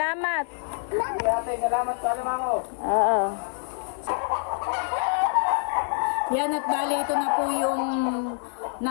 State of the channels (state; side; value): silent; right; 60 dB below the other